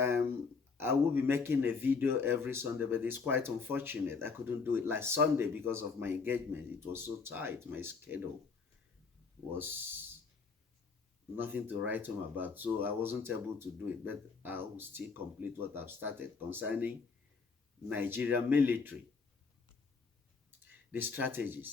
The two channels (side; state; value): right; quieter; 4.9 dB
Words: I will be making a video every Sunday, but it's quite unfortunate. I couldn't do it last Sunday because of my engagement. It was so tight. My schedule was nothing to write home about, so I wasn't able to do it, but I will still complete what I've started concerning Nigerian military, the